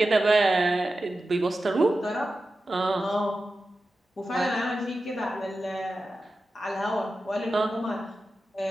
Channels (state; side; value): normal; both; correlation 0.93